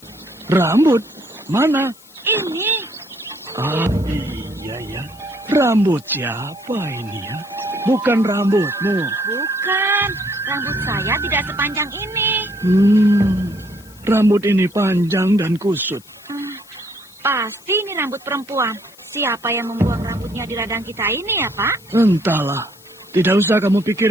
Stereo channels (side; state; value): left; noise; hiss, 24 dB below the sound